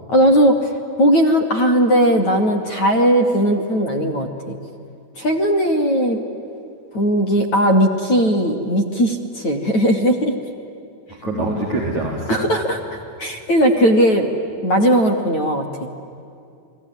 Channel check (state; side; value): late; right; 9.2 ms